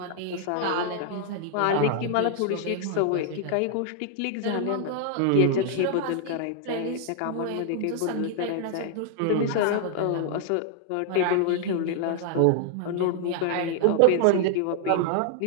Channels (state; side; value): different; both; correlation 0.00